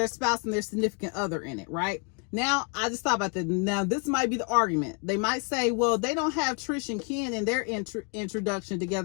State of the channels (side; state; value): right; quieter; 33.7 dB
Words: spouse and their significant other in it, right? Now, I just thought about that. Now, this might be the argument. They might say, well, they don't have Trish and Ken in their introduction